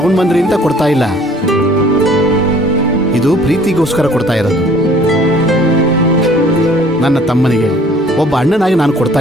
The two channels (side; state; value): both; normal; correlation 0.55